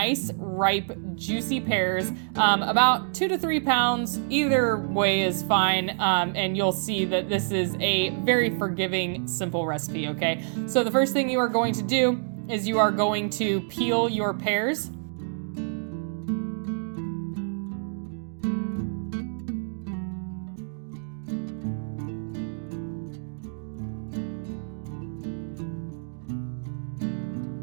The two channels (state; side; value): silent; left; digital silence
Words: ripe, juicy pears, about 2 to 3 pounds. Either way is fine, and you'll see that this is a very forgiving, simple recipe, okay? So the first thing you are going to do is you are going to peel your pears.